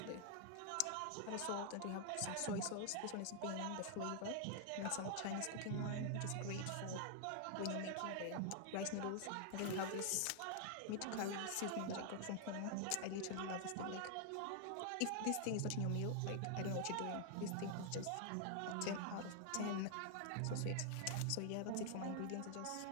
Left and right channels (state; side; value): different; both; correlation 0.00